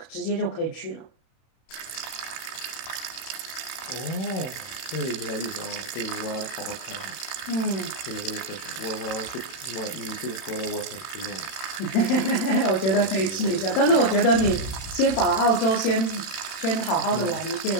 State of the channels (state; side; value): late; right; 31 ms